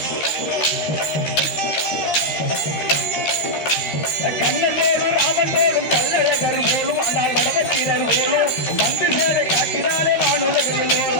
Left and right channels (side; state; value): right; late; 13 ms